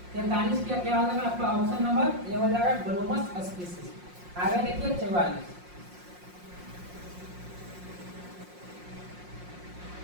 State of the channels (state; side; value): late; left; 5.6 ms